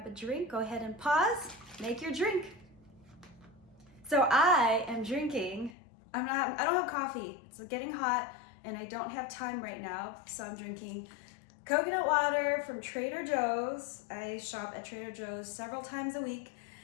a drink, go ahead and pause, make your drink. So I am drinking, I don't have coffee. It's getting hot and I don't have time right now, so I'm drinking coconut water from Trader Joe's. I shop at Trader Joe's several times a week,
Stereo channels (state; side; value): drops out; right; at 5.8 s